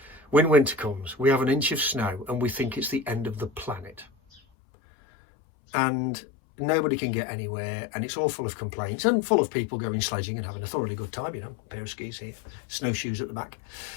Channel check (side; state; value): right; drops out; at 4.4 s